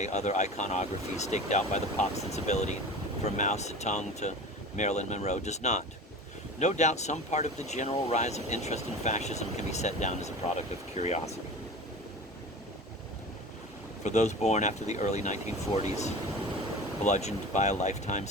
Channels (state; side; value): normal; both; correlation 0.35